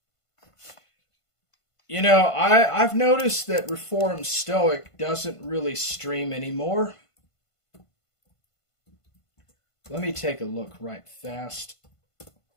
You know, I've noticed that Reformed Stoic doesn't really stream anymore. Let me take a look right fast.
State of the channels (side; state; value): right; late; 1.5 ms